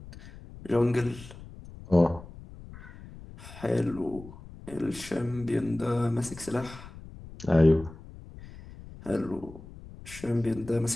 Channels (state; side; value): noise; left; rumble, 16 dB below the sound